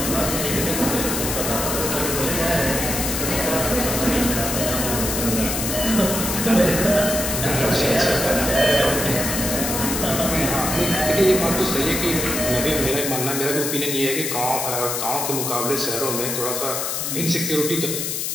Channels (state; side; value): noise; left; hiss, 2 dB below the sound